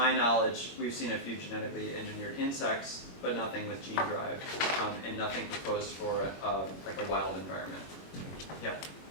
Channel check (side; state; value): right; late; 21 ms